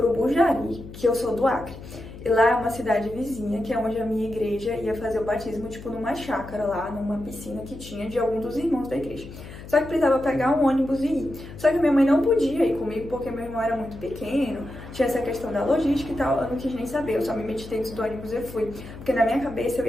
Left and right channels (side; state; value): left; noise; hum, 14 dB below the sound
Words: Bujari, que eu sou do Acre. E lá é uma cidade vizinha, que é onde a minha igreja ia fazer o batismo, tipo numa chácara lá, numa piscina que tinha de algum dos irmãos da igreja. Só que precisava pegar um ônibus e ir. Só que minha mãe não podia ir comigo, porque meu irmão era muito pequeno, tinha essa questão da logística e tal, eu não quis nem saber, eu só me meti dentro do ônibus e fui. Porque na minha cabeça eu